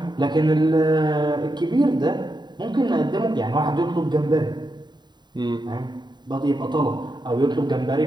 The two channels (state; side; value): late; left; 0.21 ms